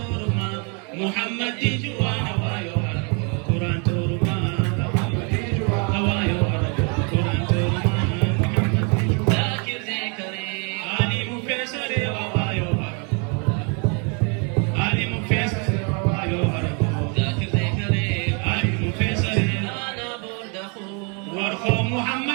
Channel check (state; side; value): quieter; left; 35.5 dB